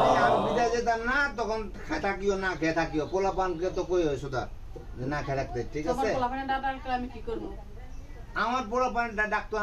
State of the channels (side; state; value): both; identical; correlation 1.00